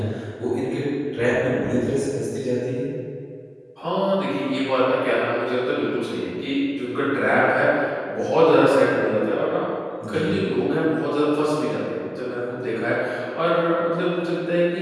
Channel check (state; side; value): identical; both; correlation 1.00